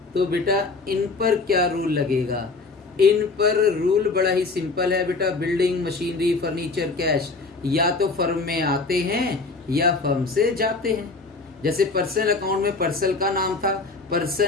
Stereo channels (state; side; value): quieter; right; 3.9 dB